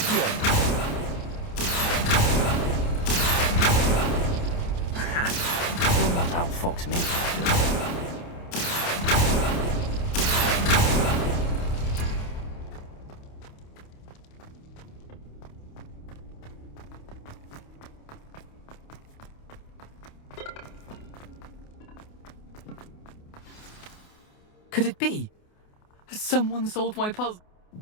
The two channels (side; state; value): right; late; 28 ms